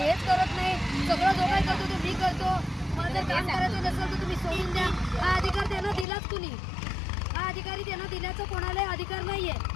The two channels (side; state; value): right; drops out; at 6.1 s